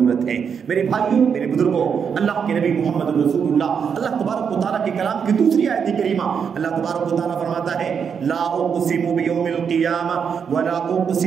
ہے۔ میرے بھائیوں، میرے بزرگوں، اللہ کے نبی محمد رسول اللہ، اللہ تبارک و تعالیٰ کے کلام کی دوسری آیت کریمہ، اللہ تبارک و تعالیٰ فرماتا ہے لا اقسم بیوم القیامہ ولا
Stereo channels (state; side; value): quieter; left; 6.8 dB